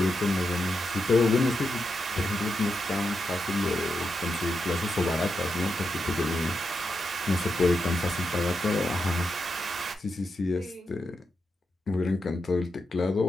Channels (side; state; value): both; normal; correlation 0.86